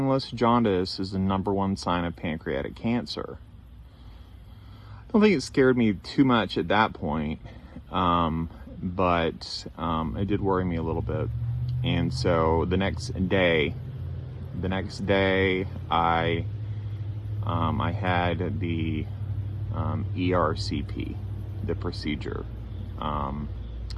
jaundice is the #1 sign of pancreatic cancer. I don't think it scared me too much at that point, but it did worry me a little bit. And so the next day, I had the ERCP, the procedure,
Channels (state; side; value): identical; both; correlation 1.00